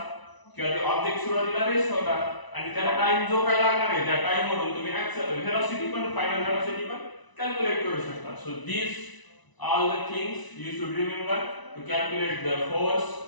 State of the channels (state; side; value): late; right; 1.0 ms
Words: किंवा ते ऑब्जेक्ट सुरुवातीला रेस्ट होता, आणि त्याला टाइम जो काय लागणार आहे त्या टाइम मधून तुम्ही व्हेलॉसिटी पण, फायनल व्हेलॉसिटी पण कॅल्क्युलेट करू शकता. So these all the things you should remember to calculate the force,